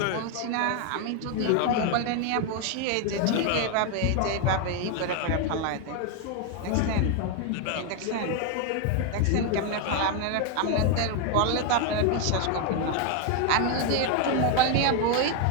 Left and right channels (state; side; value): different; both; correlation 0.01